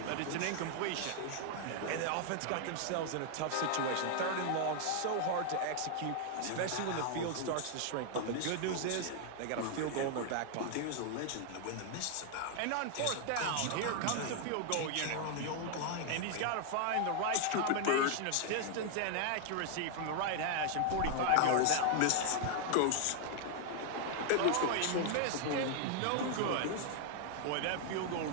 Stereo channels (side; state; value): both; different; correlation 0.00